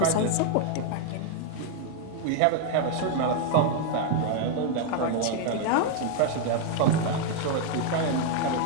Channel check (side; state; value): both; different; correlation 0.00